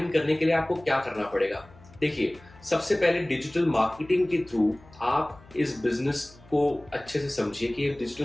करने के लिए आपको क्या करना पड़ेगा? देखिए सबसे पहले डिजिटल मार्केटिंग के थ्रू आप इस बिजनेस को अच्छे से समझिए कि डिजिटल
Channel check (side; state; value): left; noise; hum, 24 dB below the sound